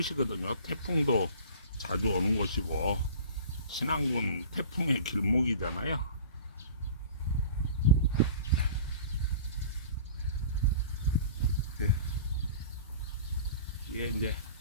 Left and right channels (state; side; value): inverted; both; correlation -0.42